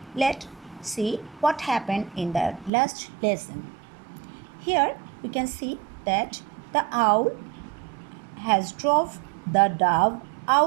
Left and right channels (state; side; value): drops out; left; at 2.7 s